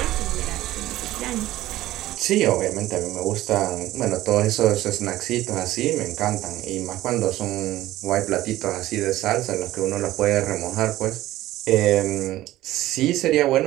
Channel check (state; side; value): quieter; left; 15.5 dB